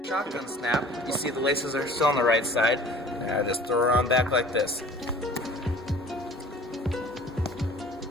Shotgun snap, you see the laces are still on the right side. And I just throw around back like this.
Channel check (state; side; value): normal; both; correlation 0.47